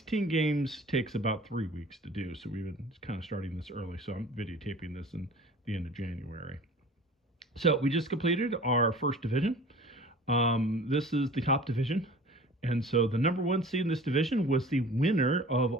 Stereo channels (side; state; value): both; normal; correlation 0.44